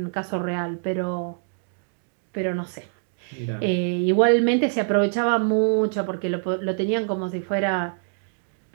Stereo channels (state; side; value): silent; left; 62 dB below the other